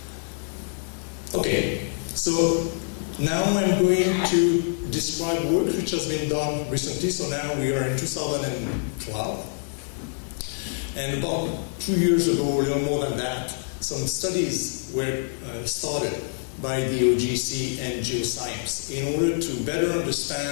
Okay, so now I'm going to describe work which has been done recently. So now we are in 2012. And about 2 years ago, a little more than that, some studies were started by the OGC and geoscience in order to better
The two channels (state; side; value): silent; right; 61 dB below the other